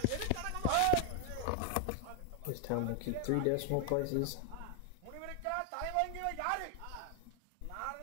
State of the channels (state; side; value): different; both; correlation 0.00